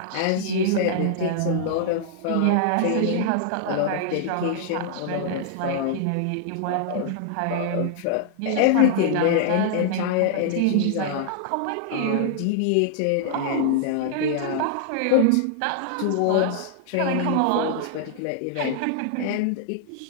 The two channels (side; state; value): both; different; correlation -0.01